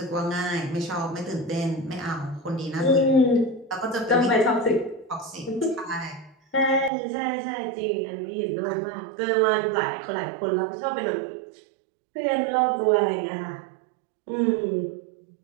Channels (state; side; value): drops out; left; at 6.9 s